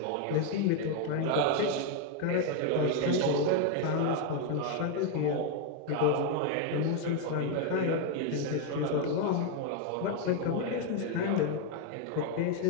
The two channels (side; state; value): both; different; correlation 0.01